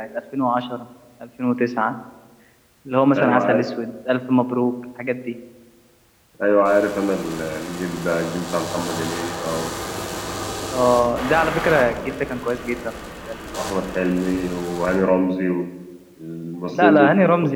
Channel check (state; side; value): identical; both; correlation 1.00